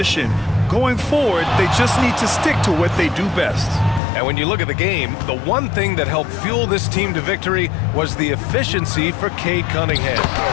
Going forward, they just need to stick to what they do best. And when you look at the game, the one thing that helped fuel this team to victory was the efficiency for Cade Cunningham.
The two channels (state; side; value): drops out; right; at 4.0 s